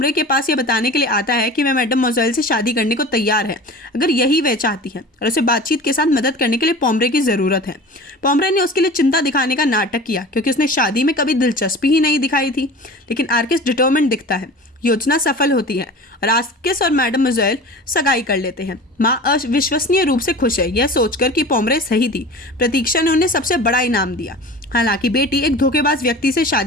के पास यह बताने के लिए आता है कि वह मैडम मोज़ेल से शादी करने को तैयार है, अगर यही वह चाहती है, और उसे बातचीत के साथ मदद करने के लिए पोमरे की ज़रूरत है। पोमरे ने उसके लिए चिंता दिखाने का नाटक किया क्योंकि उसने शादी में कभी दिलचस्पी ही नहीं दिखाई थी, लेकिन आर्किस डिटरमिन्ड दिखता है। योजना सफल होती है और आर्किस और मैडम मोज़ेल सगाई कर लेते हैं। माँ अविश्वसनीय रूप से खुश है, यह सोचकर कि पोमरे सही थी। प्रतीक्षा ने उन्हें सबसे बड़ा इनाम दिया। हालांकि बेटी एक धोखेबाज व्यक्ति से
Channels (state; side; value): normal; both; correlation 0.37